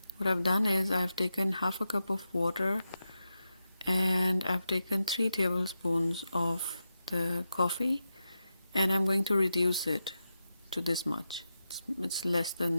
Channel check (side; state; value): both; inverted; correlation -0.89